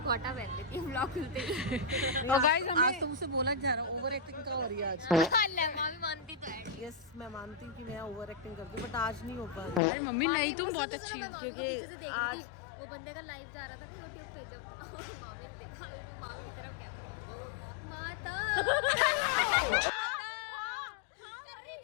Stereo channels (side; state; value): right; drops out; at 9.8 s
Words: पहन लेती है ब्लॉग खुलते ही। और गाइस हमें आज तुमसे बोला जा रहा हूँ, ओवर एक्टिंग का हो रही है आज। मामी मानती तो है। यस, मैं मानती हूँ कि मैं ओवर एक्टिंग करती हूँ, बट आज नहीं हो पा रही। अरे मम्मी नहीं, तुम बहुत अच्छी हो। मामी को पीछे से देख रही थी, वो बंदे का लाइव जा रहा था ना यूट्यूब पे, जब मामी ने देखा, मामी की तरफ क्या करे, माता कर रही